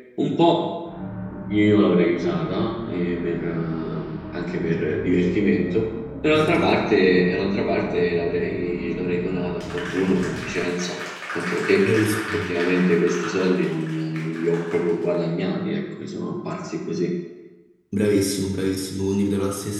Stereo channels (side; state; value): both; identical; correlation 1.00